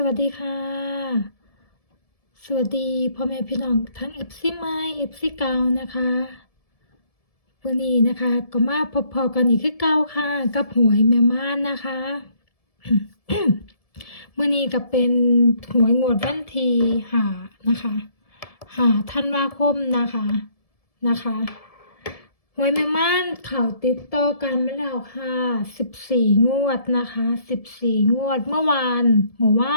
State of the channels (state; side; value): late; right; 1.7 ms